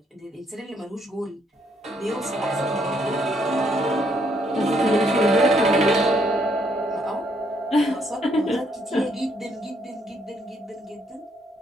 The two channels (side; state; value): both; normal; correlation 0.71